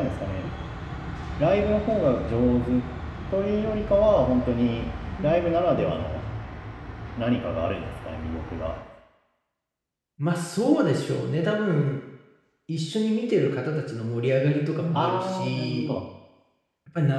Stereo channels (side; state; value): both; identical; correlation 1.00